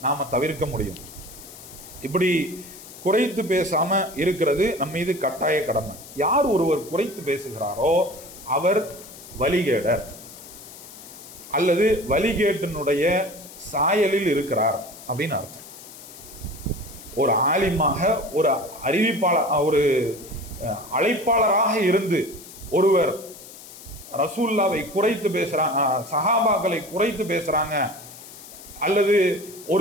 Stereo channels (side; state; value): left; noise; hiss, 17 dB below the sound